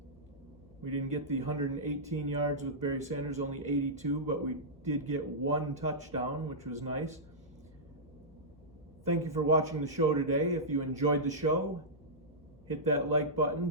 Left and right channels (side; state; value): both; normal; correlation -0.13